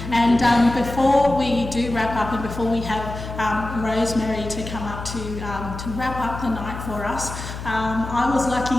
And before we do wrap up and before we have Rosemary to come up to wrap up the night for us, I was lucky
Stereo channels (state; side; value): noise; left; hum, 9 dB below the sound